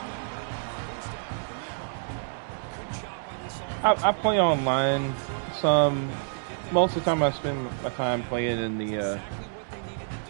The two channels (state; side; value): silent; left; digital silence